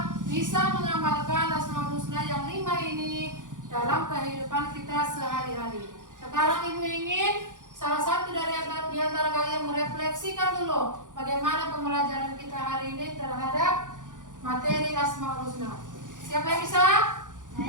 bisa mengamalkan Asmaul Husna yang 5 ini dalam kehidupan kita sehari-hari. Sekarang ibu ingin salah satu dari antara kalian merefleksikan dulu bagaimana pembelajaran kita hari ini terhadap materi Asmaul Husna. Siapa yang bisa?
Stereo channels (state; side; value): late; left; 0.88 ms